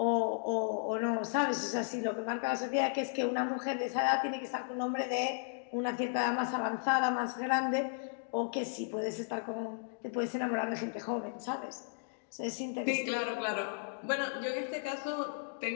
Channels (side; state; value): right; silent; digital silence